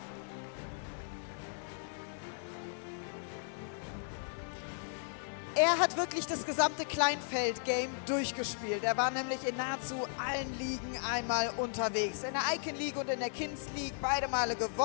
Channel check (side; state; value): right; silent; digital silence